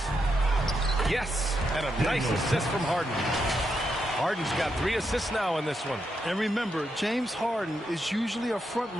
Yes, and a nice assist from Harden. Harden's got 3 assists now in this one. And remember, James Harden is usually a front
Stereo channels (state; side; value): normal; both; correlation 0.82